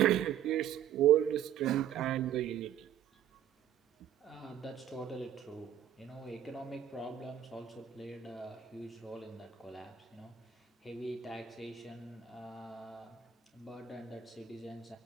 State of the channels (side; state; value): left; quieter; 10.3 dB